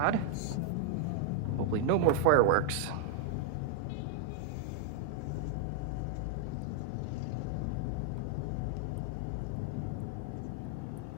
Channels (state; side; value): different; both; correlation 0.00